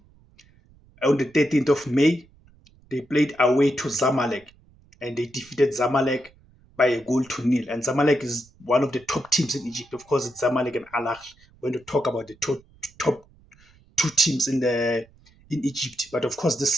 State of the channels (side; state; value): right; noise; rumble, 29 dB below the sound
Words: On the 13th of May, they played away to Zamalek, and they defeated Zamalek by 1-0. And Zamalek is one of the top teams in Egypt. Of course, it's Zamalek and Al Ahly when you talk about the top two teams in Egypt. But of course, this